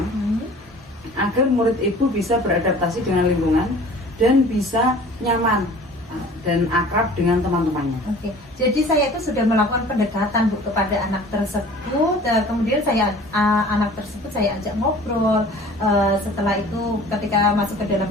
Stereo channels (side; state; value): both; normal; correlation 0.46